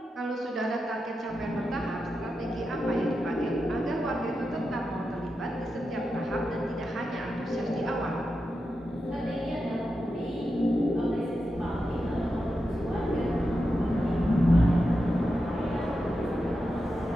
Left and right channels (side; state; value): both; normal; correlation 0.89